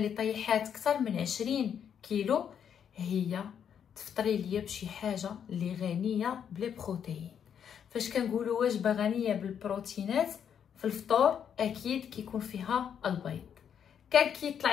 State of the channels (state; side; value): quieter; right; 8.3 dB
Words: طيحات اكثر من 20 كيلو، هي تفطري ليا بشي حاجه اللي غنيه بالبروتين. فاش كنقولوا وجبه غنيه بالبروتينات في الفطور، اكيد كيكون فيها البيض. كان كيطلع